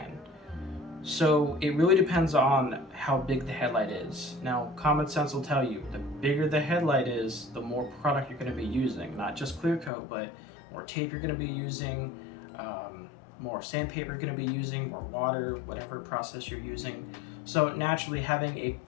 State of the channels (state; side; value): drops out; right; at 9.9 s